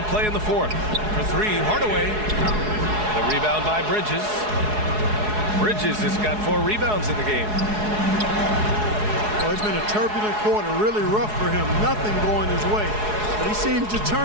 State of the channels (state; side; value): late; left; 4.7 ms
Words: play in the fourth. For three, Hardaway. The rebound by Bridges. Bridges has got 4 rebounds in the game. Well, it's been a turbulent quarter, really rough for him. Nothing going his way. But he seems